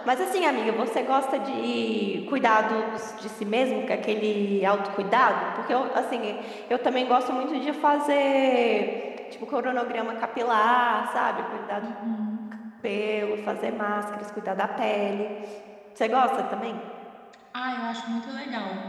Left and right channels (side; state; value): both; identical; correlation 1.00